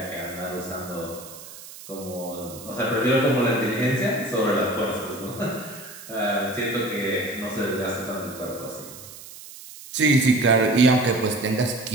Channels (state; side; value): noise; right; hiss, 16 dB below the sound